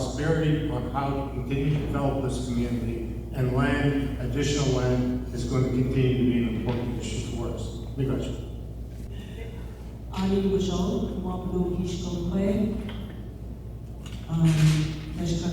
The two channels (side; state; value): both; identical; correlation 1.00